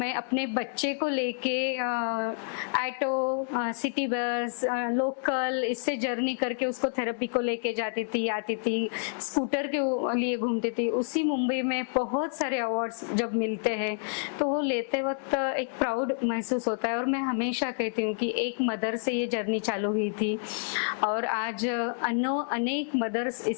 अपने बच्चे को लेके ऑटो, सिटी बस, लोकल, इससे जर्नी करके उसको थेरेपी को लेके जाती थी, आती थी, स्कूटर के लिए घूमती थी, उसी मुंबई में बहुत सारे अवार्ड्स जब मिलते हैं तो वो लेते वक्त एक प्राउड महसूस होता है। और मैं हमेशा कहती हूँ कि एक मदर से ये जर्नी चालू हुई थी और आज अनेक मदर्स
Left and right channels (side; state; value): right; silent; 58 dB below the other